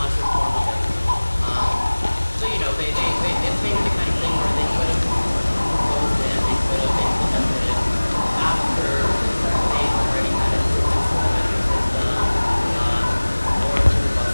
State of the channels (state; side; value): inverted; both; correlation -1.00